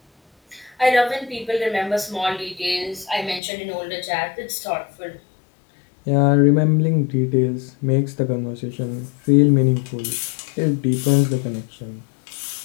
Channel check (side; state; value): right; drops out; at 3.4 s